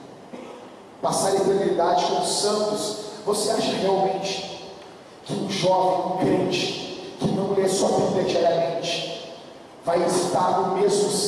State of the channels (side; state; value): both; identical; correlation 1.00